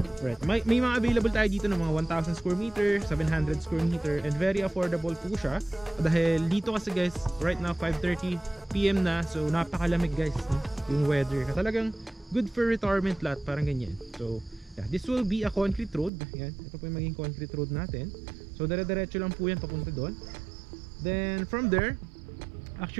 right, may mga available tayo dito ng mga 1,000 square meter, 700 square meter, and very affordable po siya dahil dito kasi guys right now 5:30 PM na, so napakalamig guys, no? Yung weather talagang good for retirement lot, parang ganyan. So yeah, this will be a concrete road. Yan, ito po yung maging concrete road natin. So dire-diretso lang po yan papunta doon. Then from there,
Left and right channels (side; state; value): left; drops out; at 16.1 s